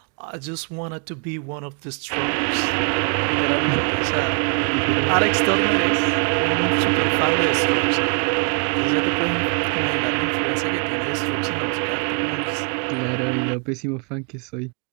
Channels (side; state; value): left; quieter; 38.9 dB